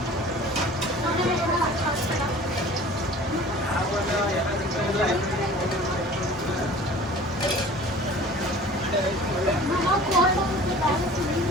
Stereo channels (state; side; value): normal; both; correlation 0.45